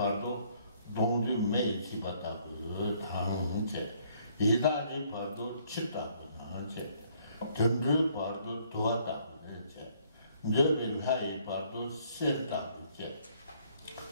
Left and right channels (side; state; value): both; inverted; correlation -0.65